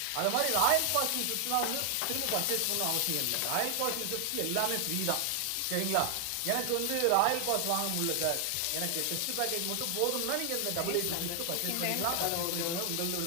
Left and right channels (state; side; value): different; both; correlation 0.00